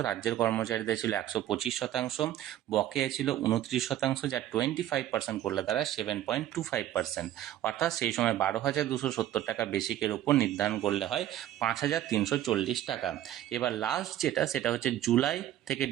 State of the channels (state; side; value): quieter; left; 12.5 dB